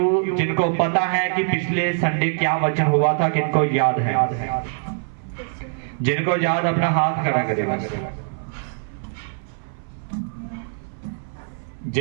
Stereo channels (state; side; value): silent; left; 60 dB below the other